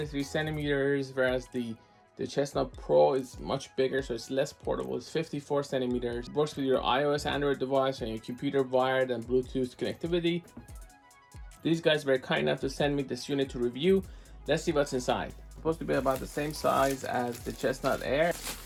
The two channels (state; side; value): identical; both; correlation 1.00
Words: centimeters, whereas the Chessnut Pro is much bigger, so it's less portable. It's 54 centimeters. It works with your iOS, Android device, and your computer wired and Bluetooth connectivity. These guys were kind enough to send me this unit to review. Let's see what's inside. It's supposed to be about the same size as the Chessnut Air.